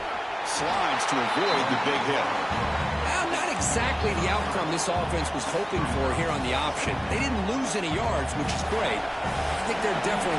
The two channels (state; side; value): identical; both; correlation 1.00